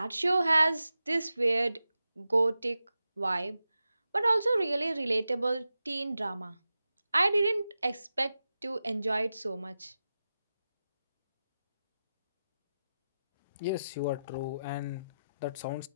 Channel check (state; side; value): inverted; both; correlation -0.92